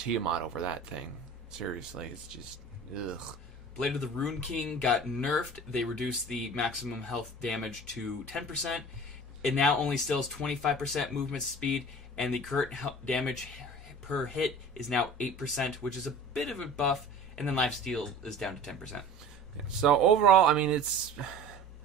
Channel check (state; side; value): normal; both; correlation 0.41